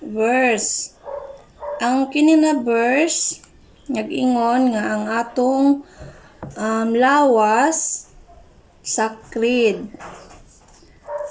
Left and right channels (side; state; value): both; identical; correlation 1.00